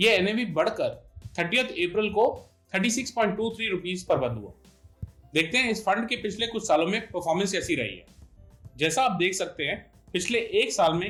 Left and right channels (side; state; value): both; identical; correlation 1.00